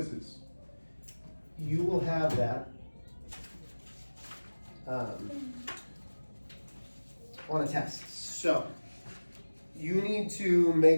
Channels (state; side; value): inverted; both; correlation -1.00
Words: You will have that on a test. So, you need to